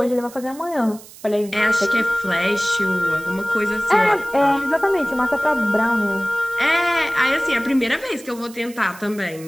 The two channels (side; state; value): right; noise; hiss, 19 dB below the sound